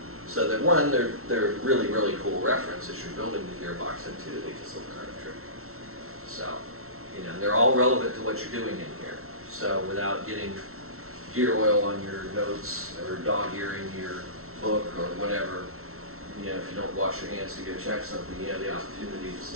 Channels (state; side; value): late; left; 0.63 ms